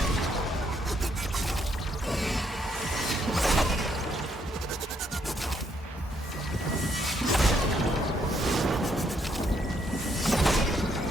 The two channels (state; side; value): normal; both; correlation 0.73